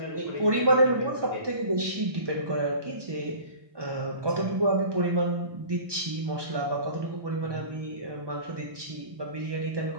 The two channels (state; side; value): late; left; 1.2 ms